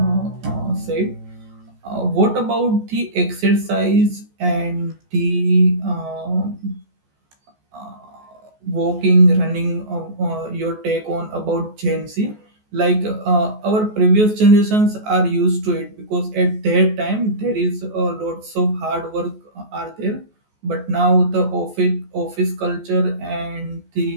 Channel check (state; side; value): late; left; 14 ms